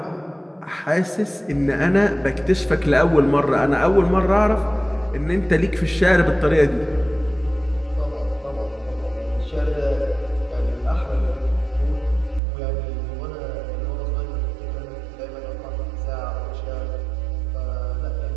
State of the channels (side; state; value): left; drops out; at 12.4 s